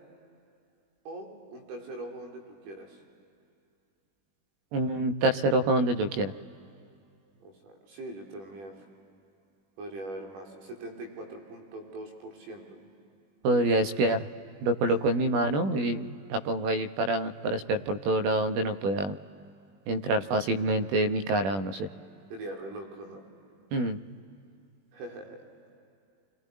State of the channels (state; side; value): late; left; 21 ms